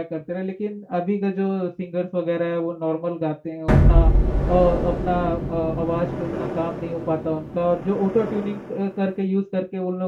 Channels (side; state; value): both; identical; correlation 1.00